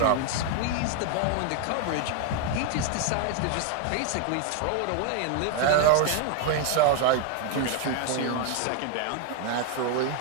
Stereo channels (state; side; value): different; both; correlation 0.00